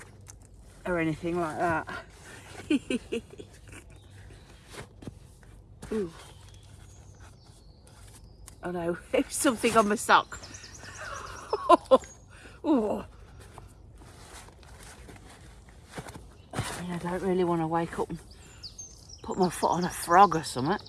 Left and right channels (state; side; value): identical; both; correlation 1.00